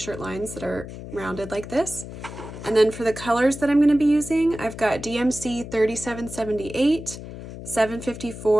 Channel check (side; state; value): left; noise; hum, 12 dB below the sound